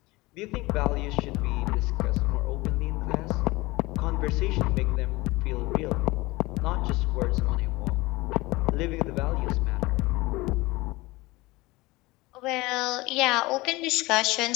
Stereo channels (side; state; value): right; quieter; 21.5 dB